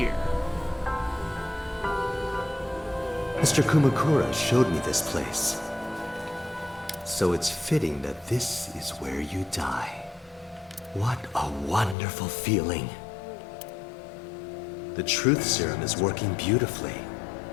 Mr. Kumakura showed me this place. So it's fitting that this is where you die. What a wonderful feeling. The truth serum is working beautifully.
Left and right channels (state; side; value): drops out; right; at 12.0 s